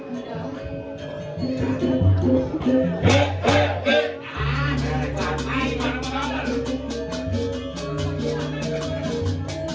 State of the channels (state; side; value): identical; both; correlation 1.00